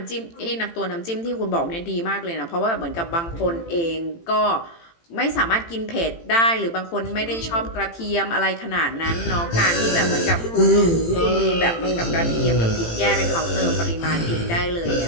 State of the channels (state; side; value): late; right; 18 ms